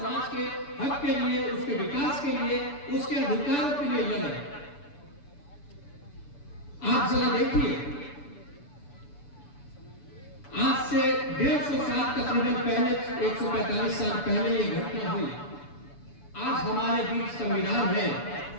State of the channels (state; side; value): late; right; 6.9 ms